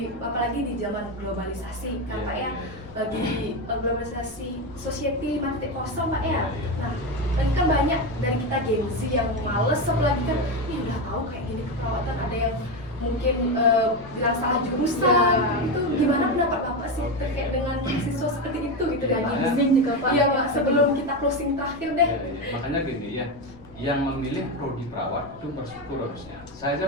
apalagi di zaman globalisasi kan Pak ya, bagi globalisasi society 5.0 Pak ya. Nah, kan banyak dari kita Gen Z yang males, apalagi kan ini udah tahu kayak gini keperawatan, ada yang mungkin bilang salah jurusan. Itu gimana pendapat Bapak sih terkait dengan mahasiswa seperti itu gitu dan Izin juga Pak. Iya Pak, sebelum kita closing terakhir deh. Makanya gini ya, yang memilih prodi perawat itu bersyukur harusnya. Saya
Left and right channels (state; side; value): noise; left; rumble, 22 dB below the sound